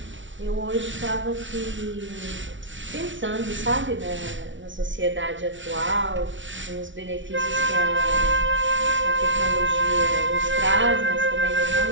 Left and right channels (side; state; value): left; late; 0.56 ms